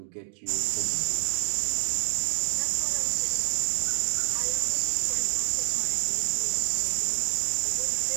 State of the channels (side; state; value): left; silent; digital silence